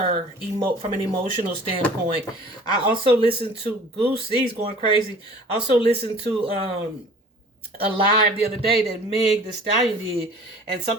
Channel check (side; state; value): both; normal; correlation 0.47